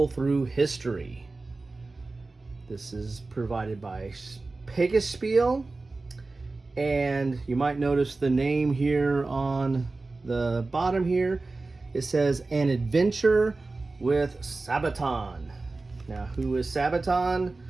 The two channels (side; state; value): left; quieter; 3.5 dB